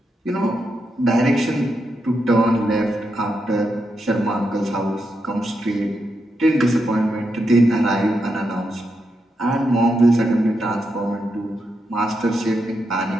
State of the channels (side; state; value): both; normal; correlation 0.84